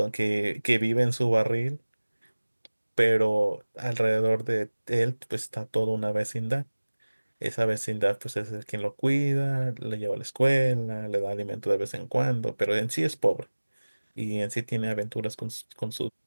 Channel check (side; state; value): both; inverted; correlation -1.00